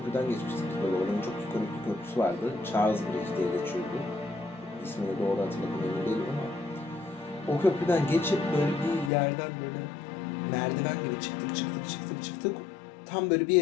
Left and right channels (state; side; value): drops out; right; at 9.1 s